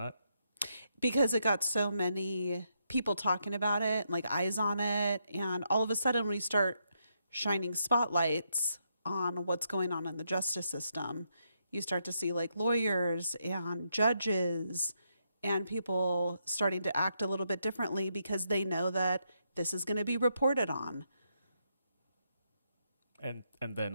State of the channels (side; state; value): both; inverted; correlation -0.78